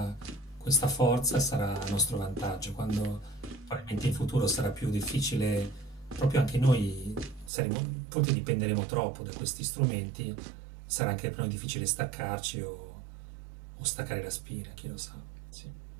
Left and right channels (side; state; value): left; drops out; at 7.5 s